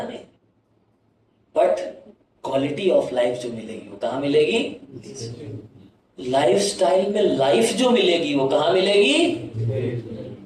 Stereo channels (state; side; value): identical; both; correlation 1.00